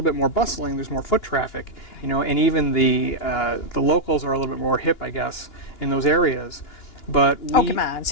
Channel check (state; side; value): late; right; 2.9 ms